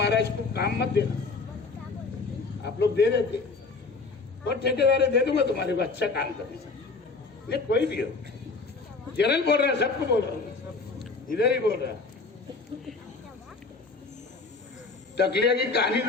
को काम मत देना, आप लोग दे देते, और ठेकेदार दे दूंगा तुम्हारे को अच्छा काम करने से। ये कोई भी हो, जनरल बोल रहा है, सबको बोल रहा हूँ, इधर ही बोल रहा है। टकलिया की कहानी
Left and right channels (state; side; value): quieter; right; 4.1 dB